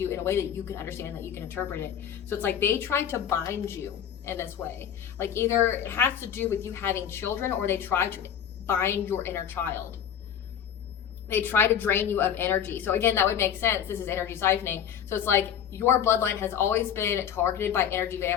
in a way that you can understand, that you can interpret it. So it's like they try to bind you in this way. Like either it has to do with you having children, or they try to bind your inner child. They try to drain you of energy. So again, that would make sense. This is energy siphoning. So it's like your bloodline has always been targeted by energy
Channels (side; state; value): right; quieter; 8.9 dB